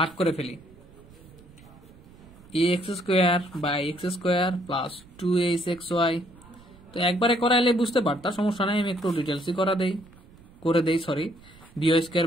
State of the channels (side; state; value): right; noise; rumble, 23 dB below the sound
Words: করে ফেলি। X square by x square plus 2hxy। তো একবারে করাইলে বুঝতে পারতাম, সমস্যা নাই, আমি একটু ডিটেলসই করে দেই sorry. B y square